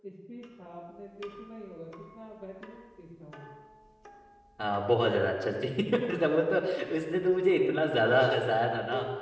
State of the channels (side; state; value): both; identical; correlation 1.00